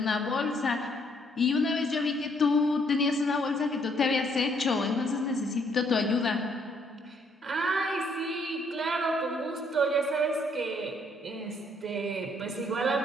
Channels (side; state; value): both; normal; correlation 0.68